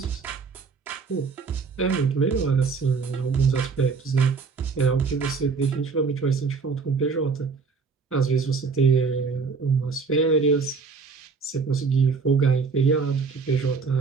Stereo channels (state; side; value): quieter; left; 4.9 dB